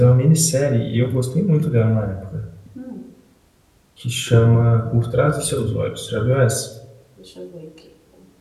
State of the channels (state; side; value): identical; both; correlation 1.00